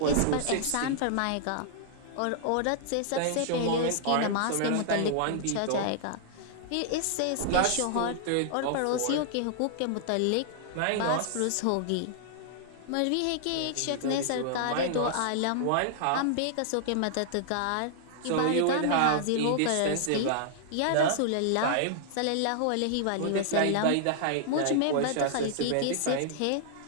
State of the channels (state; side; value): different; both; correlation -0.01